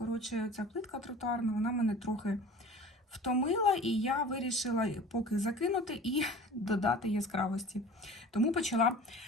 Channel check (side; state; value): both; normal; correlation 0.41